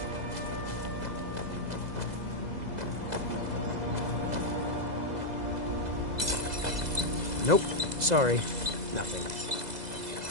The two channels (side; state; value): left; late; 2.0 ms